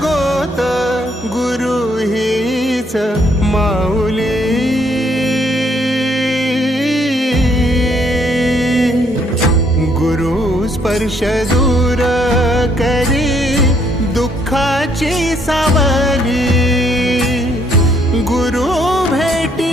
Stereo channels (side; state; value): both; normal; correlation 0.69